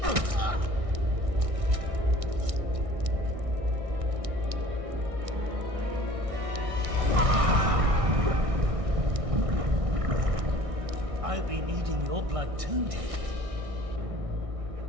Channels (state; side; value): late; left; 1.6 ms